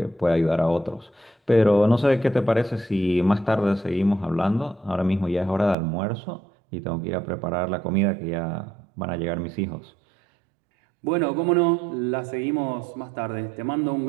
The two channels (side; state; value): left; drops out; at 5.8 s